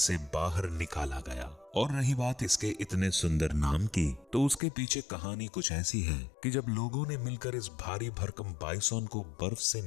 बाहर निकाला गया। और रही बात इसके इतने सुंदर नाम की, तो उसके पीछे कहानी कुछ ऐसी है कि जब लोगों ने मिलकर इस भारी भरकम बाइसॉन को बर्फ से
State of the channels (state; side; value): drops out; right; at 4.6 s